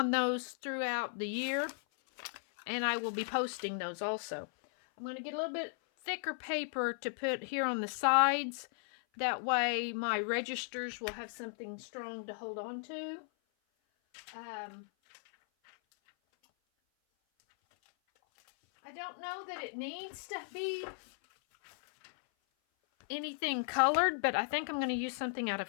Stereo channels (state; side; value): silent; right; 54 dB below the other